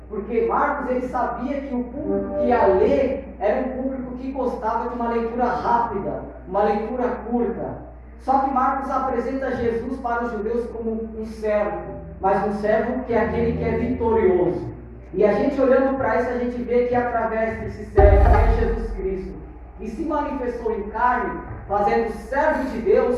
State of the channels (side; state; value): both; identical; correlation 1.00